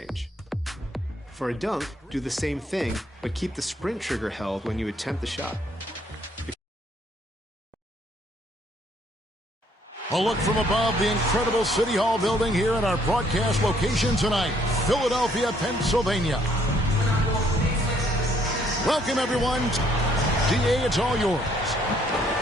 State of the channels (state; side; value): normal; both; correlation 0.66